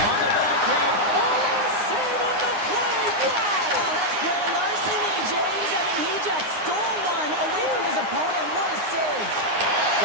the backhand. Oh, what a save on the play! Wow! Oh, that's great larceny, James. I mean, he just stole one away from his opponent. What a save.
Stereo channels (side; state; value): left; late; 9.7 ms